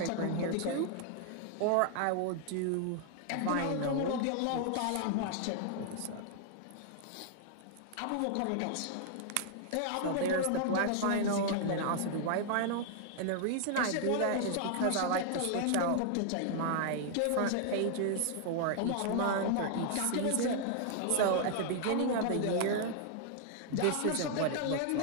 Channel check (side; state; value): both; different; correlation 0.00